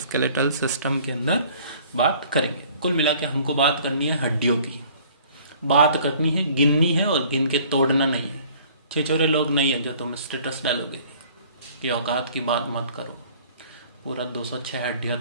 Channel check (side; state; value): both; inverted; correlation -0.53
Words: सिस्टम के अंदर बात करेंगे। कुल मिला के हमको बात करनी है हड्डियों की, बात करनी है, गिननी है और गिन के तोड़ना नहीं है। छिछोरे लोग नहीं है जो तुम स्टेटस डालोगे कि औकात की बात मत करो, पूरा 206 हड्डियां